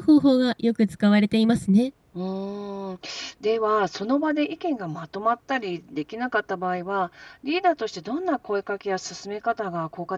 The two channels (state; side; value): identical; both; correlation 1.00